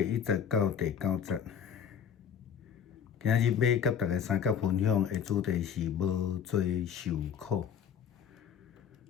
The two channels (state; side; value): quieter; right; 8.0 dB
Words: 1节到第9节。今仔日要甲大家三角分享的主题是无罪受苦。